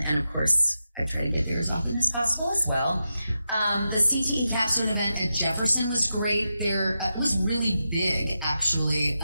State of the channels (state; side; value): inverted; both; correlation -0.89